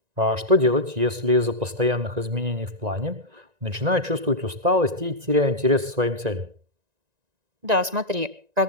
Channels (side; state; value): left; late; 1.9 ms